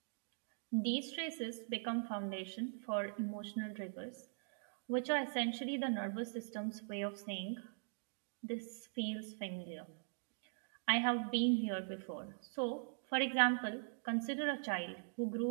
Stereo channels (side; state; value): left; silent; digital silence